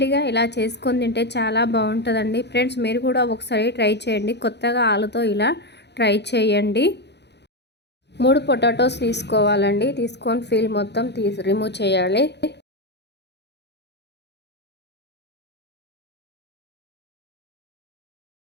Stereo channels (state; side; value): late; right; 0.50 ms